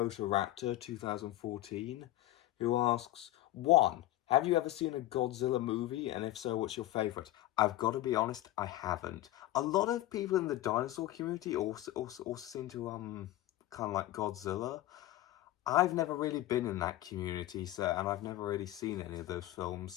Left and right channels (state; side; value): quieter; right; 15.0 dB